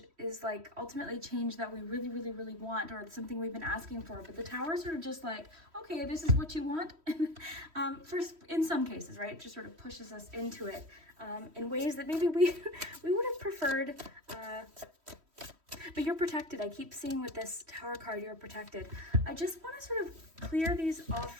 is like ultimately change that we really, really, really want, or it's something we've been asking for. But the Tower is sort of just like, okay, this is what you want. First, in some cases, right? It just sort of pushes us into it in ways that maybe we would have preferred. But you're protected. I keep seeing with this Tower card, you're protected. I just want to sort of clear these off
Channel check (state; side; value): late; left; 3.1 ms